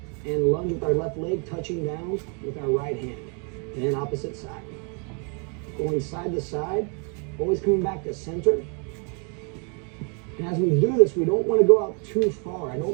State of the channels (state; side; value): quieter; left; 37.6 dB